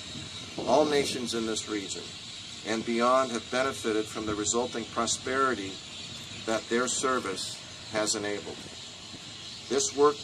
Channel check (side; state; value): both; identical; correlation 1.00